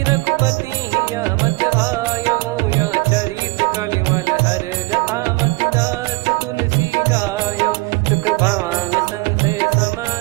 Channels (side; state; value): left; quieter; 24.0 dB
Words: रघुपति या मत भायो। या चरित कलिमल हर जथा, मति दास तुलसी गायो। सुख भवन संशय